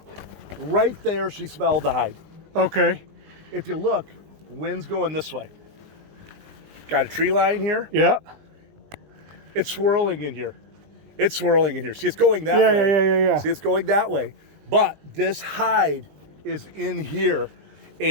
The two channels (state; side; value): late; left; 20 ms